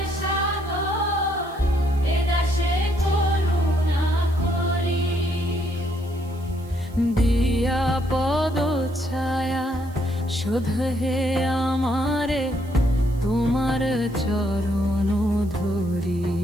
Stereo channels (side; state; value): right; noise; hiss, 26 dB below the sound